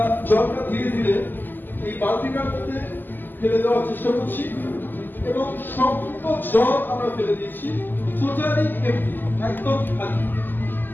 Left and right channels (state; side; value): late; right; 0.090 ms